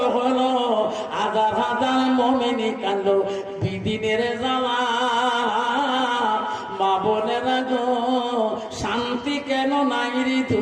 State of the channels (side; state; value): both; identical; correlation 1.00